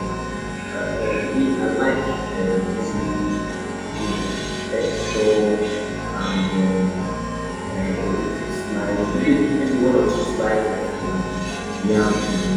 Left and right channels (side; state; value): both; identical; correlation 1.00